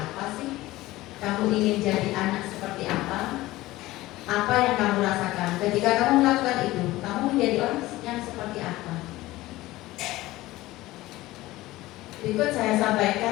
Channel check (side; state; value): right; quieter; 17.8 dB